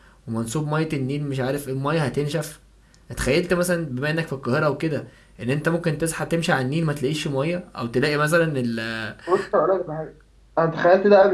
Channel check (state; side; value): identical; both; correlation 1.00